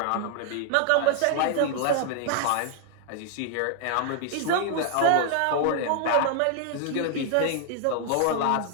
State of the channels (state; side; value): different; both; correlation 0.00